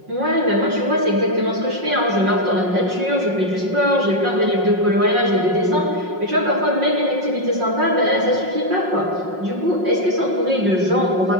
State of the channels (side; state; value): left; late; 5.5 ms